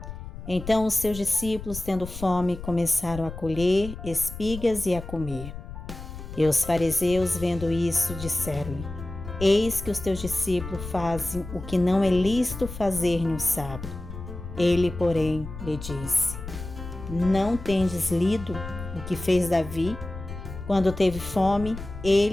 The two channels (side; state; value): left; noise; rumble, 11 dB below the sound